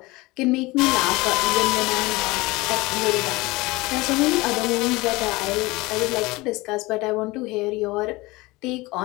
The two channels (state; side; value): quieter; right; 21.9 dB